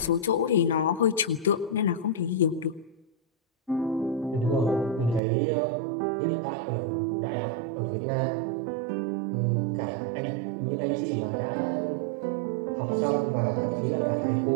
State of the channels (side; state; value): left; drops out; at 5.2 s